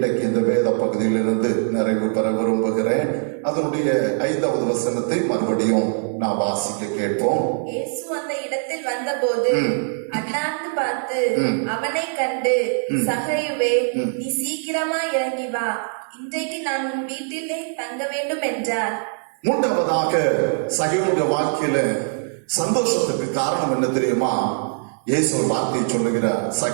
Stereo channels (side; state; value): left; silent; 64 dB below the other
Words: இந்த வேத பகுதியிலிருந்து நிறைவு பெற விரும்புகிறேன். அதனுடைய 5வது வசனத்தை மறுபடியும் நான் வாசிக்க கேட்போம். இயேசு அந்த இடத்தில் வந்தபோது அண்ணாந்து பார்த்து அவனை கண்டு, சகையுவே, நீ சீக்கிரமா இறங்கி வா, இன்றைக்கு நான் உன் வீட்டிலே தங்க வேண்டும் என்றார். மூன்றாவதாக சகையுடைய வாழ்க்கையில சந்தோஷத்துக்கு காரணம் என்ன தெரியுமா? இயேசு ஒரு வார்த்தையை சொல்லுகிறார்,